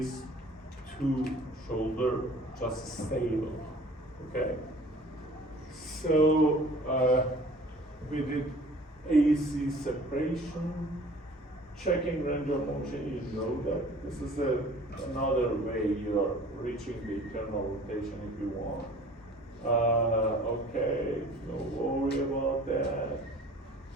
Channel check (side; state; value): both; normal; correlation 0.48